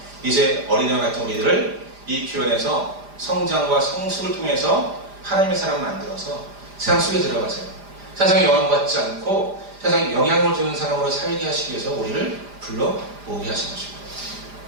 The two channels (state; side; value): late; left; 5.0 ms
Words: 이제 어린아이 같은 우리들을 이 교회에서 성장과 성숙을 통해서 하나님의 사람 만들어서 세상 속에 들어가세요. 세상에 영향받지 않고 세상에 영향을 주는 사람으로 살게 하시기 위해서 우리를 불러 모으게 하신 것입니다.